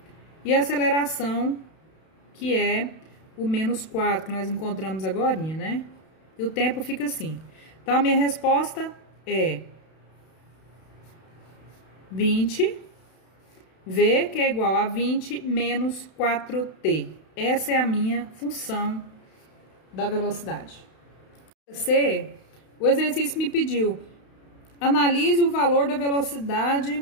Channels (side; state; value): right; late; 32 ms